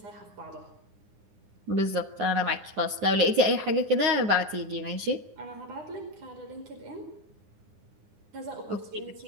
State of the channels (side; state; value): left; late; 9.5 ms